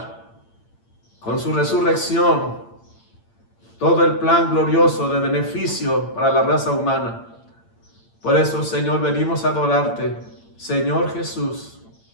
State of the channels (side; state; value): right; late; 8.8 ms